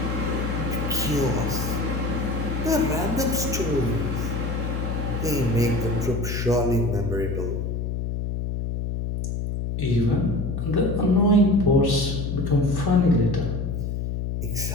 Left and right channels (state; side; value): noise; left; hum, 2 dB below the sound